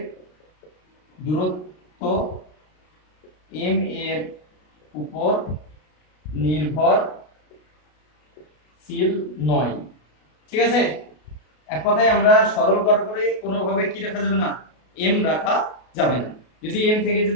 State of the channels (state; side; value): late; right; 33 ms